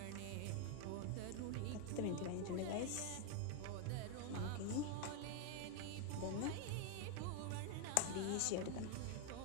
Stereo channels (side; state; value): both; different; correlation 0.01